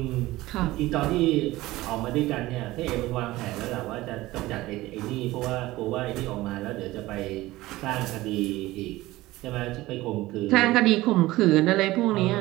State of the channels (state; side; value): quieter; left; 18.0 dB